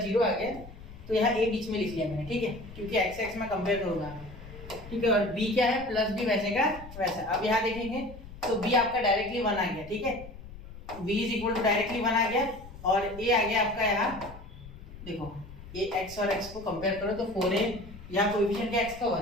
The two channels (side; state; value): left; noise; rumble, 15 dB below the sound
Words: 0 आ गया, तो यहाँ a बीच में लिख लिया मैंने, ठीक है, क्योंकि x में कंपेयर करूंगा, ठीक है। और b क्या है, प्लस b वैसे का वैसा। अब यहाँ देखेंगे तो b आपका डायरेक्टली 1 आ गया, ठीक है, b is equal to directly 1 आ गया, और a आ गया आपका यहाँ, देखो ये x और x को कंपेयर करो तो 4a, यहाँ कोएफिशिएंट क्या x का